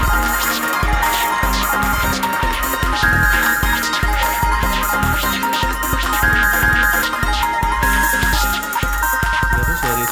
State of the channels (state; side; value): identical; both; correlation 1.00